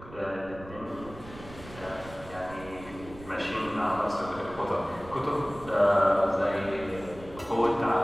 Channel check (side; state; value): right; noise; rumble, 17 dB below the sound